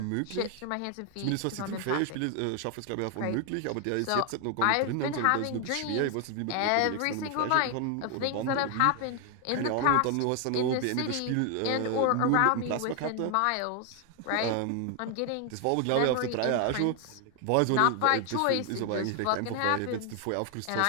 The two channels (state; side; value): different; both; correlation 0.00